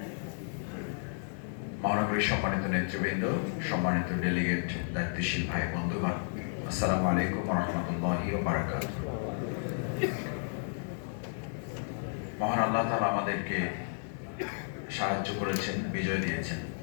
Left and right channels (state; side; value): silent; right; digital silence